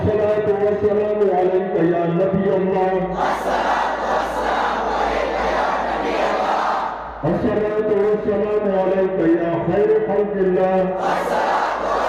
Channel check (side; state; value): both; identical; correlation 1.00